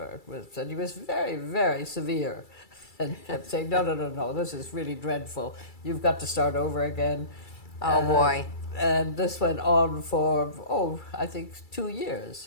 And he was very, very severe. And kept saying, no, this is really dreadful. You've got to start over again. Oh, boy. And this went on for, I think 2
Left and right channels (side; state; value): right; late; 2.3 ms